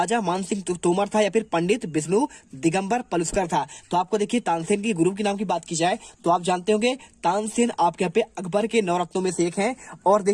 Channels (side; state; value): both; identical; correlation 1.00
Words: मान सिंह तोमर था या फिर पंडित विष्णु दिगंबर पलुस्कर था। तो आपको देखिए तानसेन के गुरु के नाम की बात की जाए तो आप जानते होंगे तानसेन आपके यहाँ पे अकबर के 9 रत्नों में से एक है। और